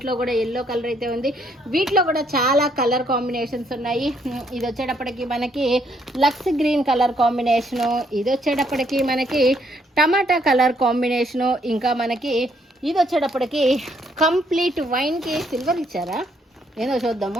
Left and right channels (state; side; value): normal; both; correlation 0.70